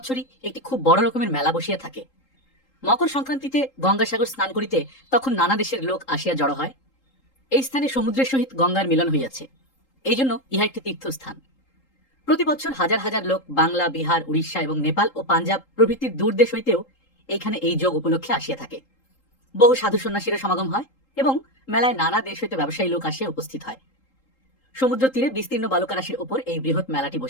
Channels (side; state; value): right; late; 3.8 ms